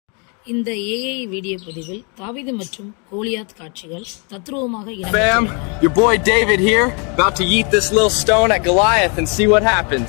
இந்த AI video பதிவில் தாவீது மற்றும் கோலியாத் காட்சிகள் தத்ரூபமாக Fam, your boy David here, about to eat this little stone at Goliath and see what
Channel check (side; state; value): right; quieter; 35.3 dB